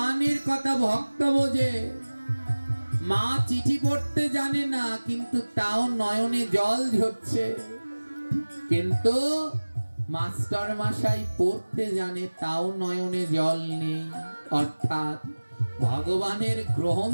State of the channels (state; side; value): inverted; both; correlation -1.00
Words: কথা ভক্ত বোঝে। মা চিঠি পড়তে জানে না, কিন্তু তাও নয়নে জল ঝরছে। কিন্তু মাস্টার মশাই পড়তে জানে, তাও নয়নে জল নেই। অর্থাৎ ভগবানের